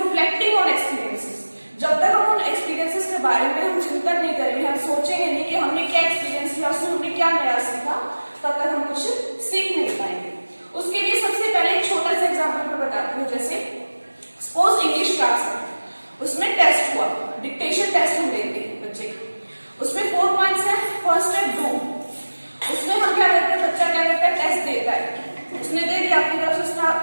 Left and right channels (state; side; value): inverted; both; correlation -1.00